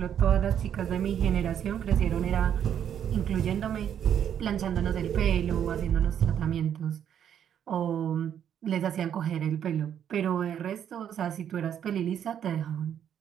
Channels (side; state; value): left; quieter; 9.2 dB